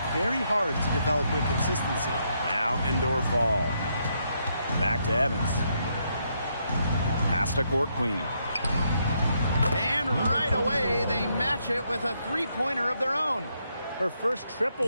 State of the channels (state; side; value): inverted; both; correlation -0.77